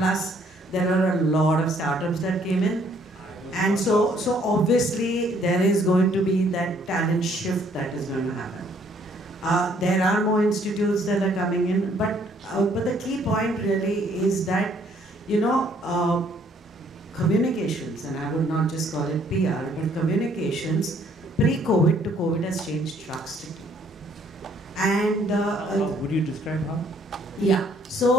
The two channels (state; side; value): normal; both; correlation 0.64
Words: there are a lot of startups that came in, and so obviously there is going to be that talent shift that is going to happen. There are more institutes that are coming in, but the key point really is that communications, and I would not just call it PR, but communications pre-COVID to COVID has changed drastically. And would you describe how? Yeah.